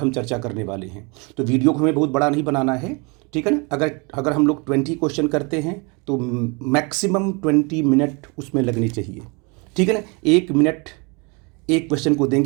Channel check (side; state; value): left; quieter; 30.4 dB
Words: चर्चा करने वाले हैं। तो वीडियो को हमें बहुत बड़ा नहीं बनाना है, ठीक है ना। अगर हम लोग 20 क्वेश्चन करते हैं तो मैक्सिमम 20 मिनट उसमें लगने चाहिए, ठीक है ना। 1 मिनट एक क्वेश्चन को